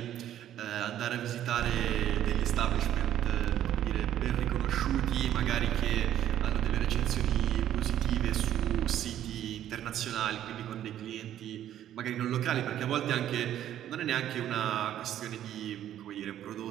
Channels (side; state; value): left; quieter; 11.5 dB